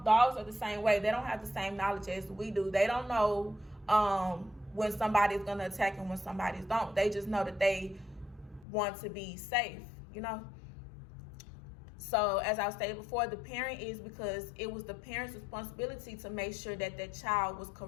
are the same way. They don't have the same knowledge as we do. They don't know when somebody's going to attack and when somebody's don't. They just know that they want to be safe, So as I stated before, the parent is, because it was the parent's responsibility to make sure that that child was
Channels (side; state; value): right; drops out; at 8.7 s